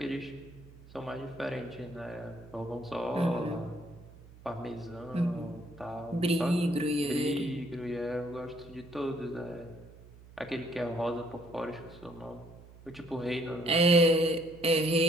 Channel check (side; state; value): right; noise; hum, 21 dB below the sound